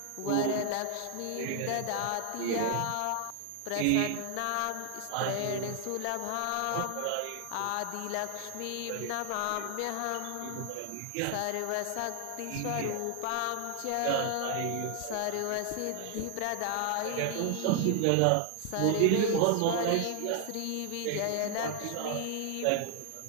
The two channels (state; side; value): different; both; correlation 0.00